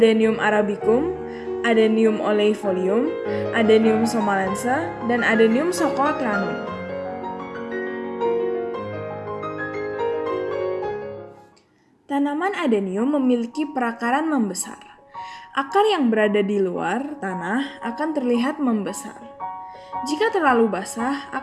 arabicum, Adenium oleifolium, Adenium somalense, dan Adenium socotranum. Tanaman adenium memiliki perakaran membesar. Akar yang berada di luar tanah akan terlihat membesar. Jika terlalu basah,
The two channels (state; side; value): identical; both; correlation 1.00